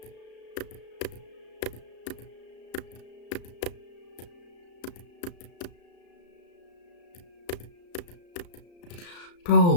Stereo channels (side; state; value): right; late; 34 ms